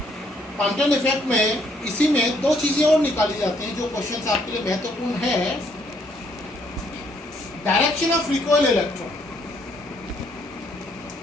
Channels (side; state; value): both; normal; correlation 0.68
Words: कॉम्पटन इफेक्ट में इसी में दो चीजें और निकाली जाती हैं जो क्वेश्चन आपके लिए महत्वपूर्ण है। Direction of recoil electron.